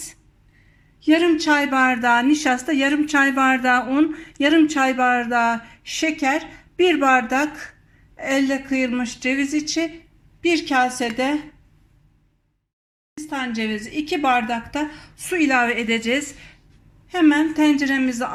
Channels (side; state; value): both; identical; correlation 1.00